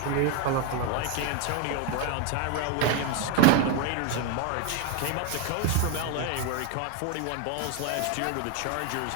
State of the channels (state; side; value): different; both; correlation 0.01